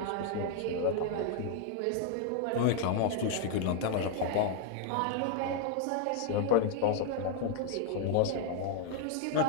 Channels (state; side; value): different; both; correlation 0.00